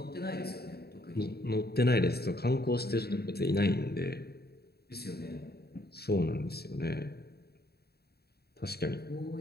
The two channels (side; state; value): right; late; 0.46 ms